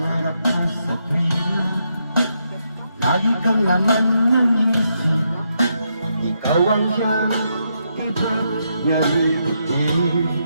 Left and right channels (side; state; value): both; inverted; correlation -0.80